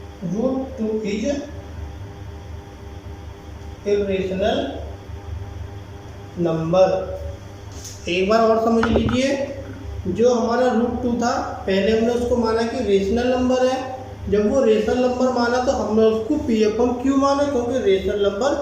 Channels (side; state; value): both; identical; correlation 1.00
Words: √2 is irrational number. एक बार और समझ लीजिए, जो हमारा √2 था, पहले हमने उसको माना कि रेशनल नंबर है। जब वो रेशनल नंबर माना तो हमने उसको P/Q माना, क्योंकि रेशनल नंबर